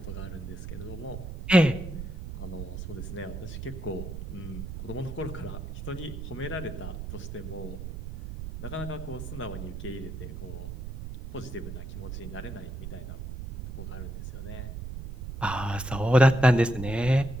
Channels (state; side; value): noise; right; rumble, 8 dB below the sound